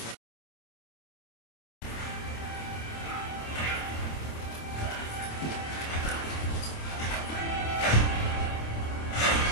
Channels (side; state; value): right; late; 26 ms